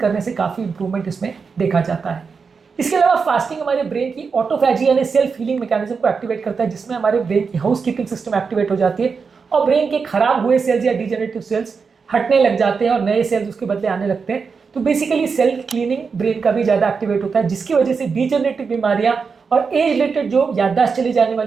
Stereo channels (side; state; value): left; quieter; 5.3 dB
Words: से काफ़ी इंप्रूवमेंट इसमें देखा जाता है। इसके अलावा फास्टिंग हमारे ब्रेन की ऑटोफैजी यानी सेल्फ हीलिंग मैकेनिज्म को एक्टिवेट करता है जिसमें हमारे ब्रेन की हाउस कीपिंग सिस्टम एक्टिवेट हो जाती है और ब्रेन के खराब हुए सेल्स या डिजेनरेटिव सेल्स हटने लग जाते हैं और नए सेल्स उसके बदले आने लगते हैं। तो बेसिकली सेल क्लीनिंग ब्रेन का भी ज़्यादा एक्टिवेट होता है जिसकी वजह से डिजेनरेटिव बीमारियां और एज रिलेटेड जो याददाश्त चली जाने